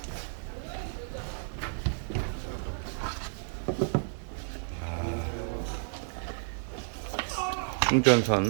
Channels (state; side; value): silent; left; 57 dB below the other